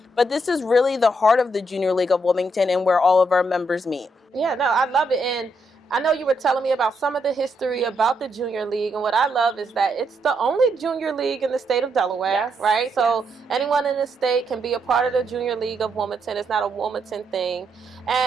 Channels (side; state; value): both; normal; correlation 0.78